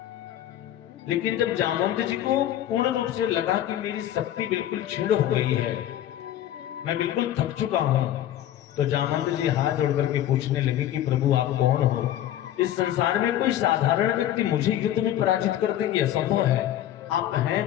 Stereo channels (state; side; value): quieter; right; 12.1 dB